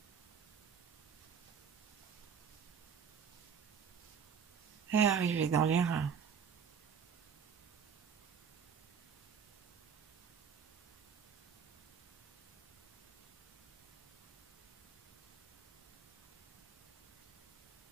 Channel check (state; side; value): quieter; left; 6.9 dB